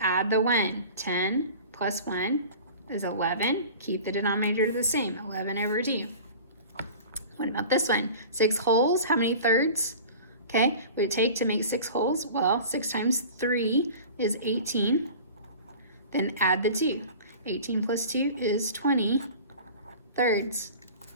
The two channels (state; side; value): inverted; both; correlation -0.39